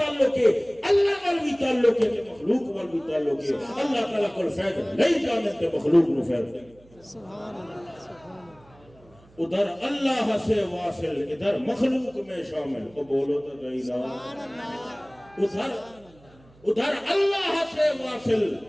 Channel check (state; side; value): noise; right; hum, 27 dB below the sound